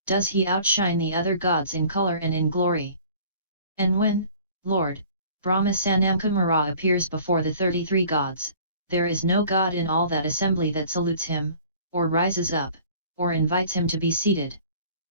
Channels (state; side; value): inverted; both; correlation -0.50